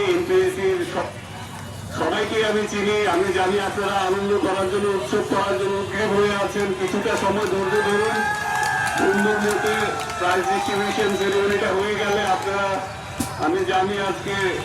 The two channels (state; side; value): identical; both; correlation 1.00